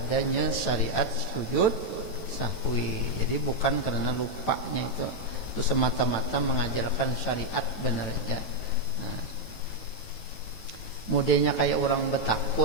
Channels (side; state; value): right; late; 9.1 ms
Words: syariat sujud sahwi. Jadi bukan karena lupanya itu semata-mata mengajarkan syariat benar aja. Nah, mudahnya kayak orang